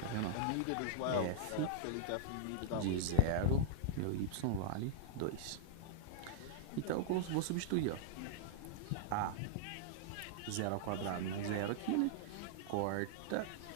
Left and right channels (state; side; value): different; both; correlation -0.02